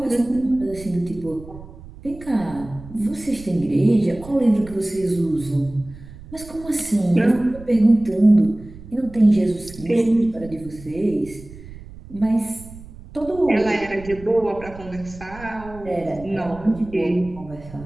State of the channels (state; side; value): noise; right; rumble, 17 dB below the sound